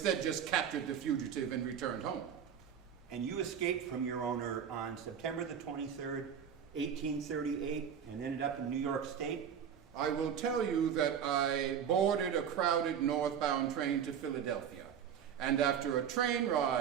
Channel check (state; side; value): quieter; left; 8.2 dB